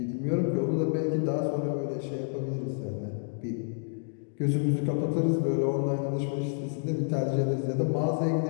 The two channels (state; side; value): silent; right; digital silence